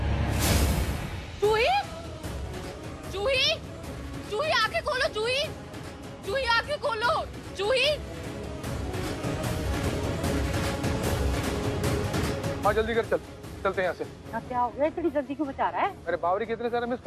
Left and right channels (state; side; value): identical; both; correlation 1.00